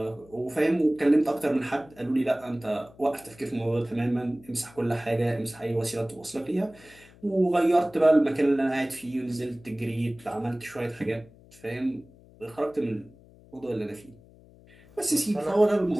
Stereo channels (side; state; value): left; noise; hum, 25 dB below the sound